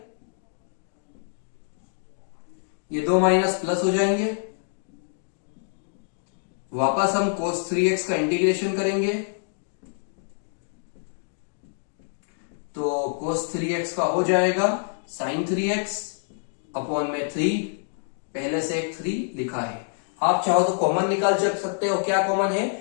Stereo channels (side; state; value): right; silent; digital silence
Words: ये 2 माइनस प्लस हो जाएंगे, वापस हम cos 3x का इंटीग्रेशन करेंगे, तो cos 3x का हो जाएगा sin 3x अपॉन में 3, पहले से एक 3 लिखा है। आप चाहो तो कॉमन निकाल सकते हो। क्या कॉमन है?